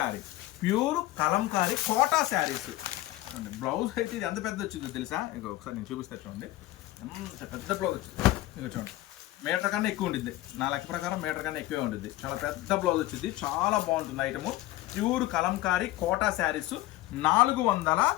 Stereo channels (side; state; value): right; quieter; 16.6 dB